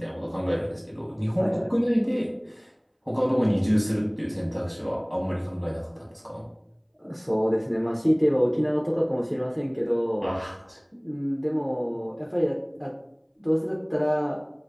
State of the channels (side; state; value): both; identical; correlation 1.00